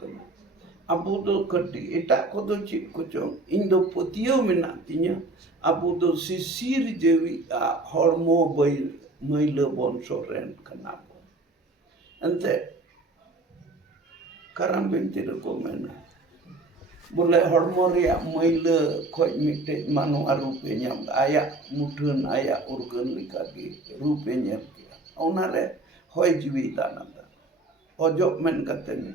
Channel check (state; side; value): quieter; left; 3.0 dB